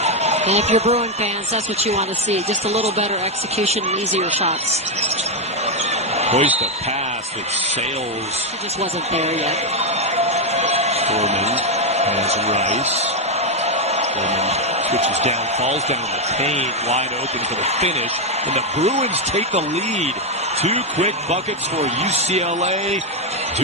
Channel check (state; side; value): normal; both; correlation 0.04